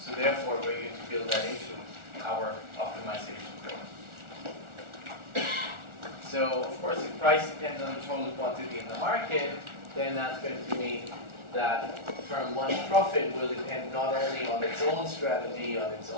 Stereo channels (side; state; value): left; late; 1.4 ms